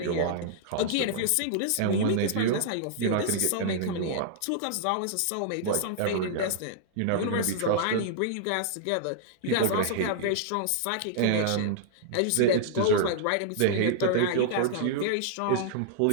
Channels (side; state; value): both; different; correlation -0.01